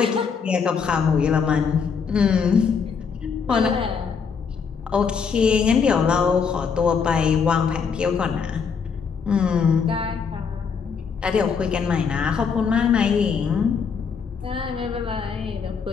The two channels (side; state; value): right; quieter; 6.0 dB